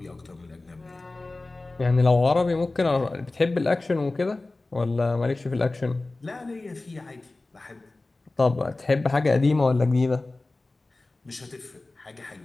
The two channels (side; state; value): right; quieter; 3.1 dB